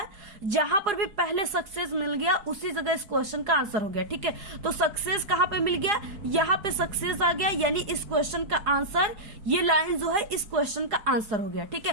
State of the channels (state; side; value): late; left; 4.9 ms